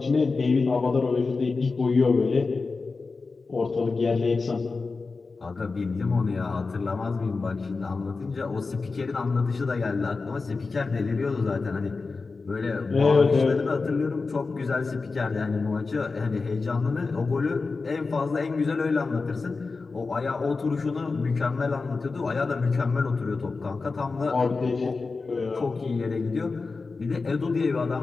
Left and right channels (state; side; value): quieter; right; 4.2 dB